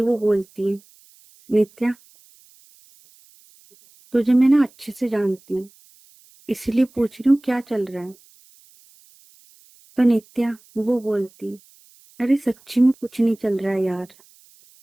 वो बोलती है, नित्या तुझे मैं ना अच्छे से जानती हूँ, इसलिए पूछ रही हूँ क्या चल रहा है। तो नित्या वो बोलती, अरे सच्ची में कुछ नहीं चल रहा है यार,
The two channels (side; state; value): right; noise; hiss, 29 dB below the sound